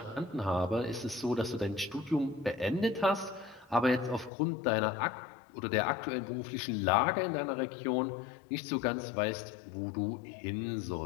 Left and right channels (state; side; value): drops out; right; at 4.3 s